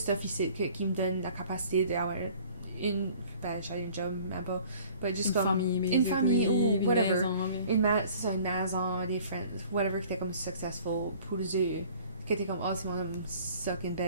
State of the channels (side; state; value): both; inverted; correlation -0.51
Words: ici qui me donne la capacité d'avoir une, ben, j'ai un job, même pas. But juste une comme, famille, une famille ou une whatever. maison, mais- c'est ça, une maison, des friends, whatever, qui était comme successful pour eux. Qui était comme, oh, c'est mon homme suck in